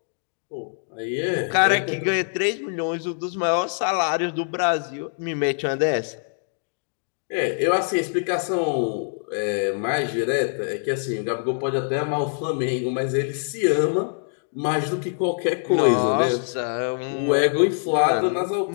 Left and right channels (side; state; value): right; silent; digital silence